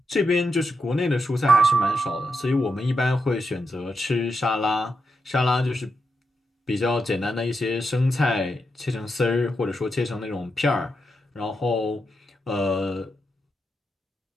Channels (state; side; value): normal; both; correlation 0.85